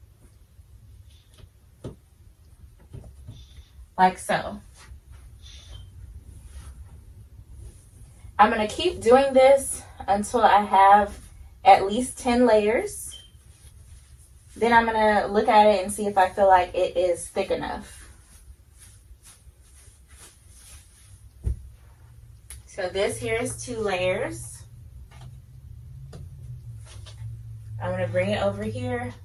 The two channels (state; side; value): identical; both; correlation 1.00